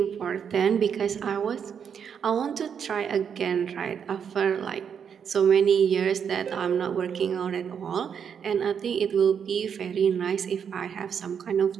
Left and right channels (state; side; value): quieter; left; 7.4 dB